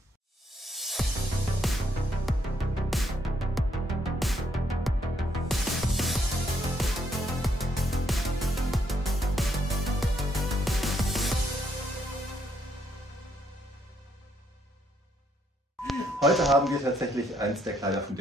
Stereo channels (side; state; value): both; normal; correlation 0.73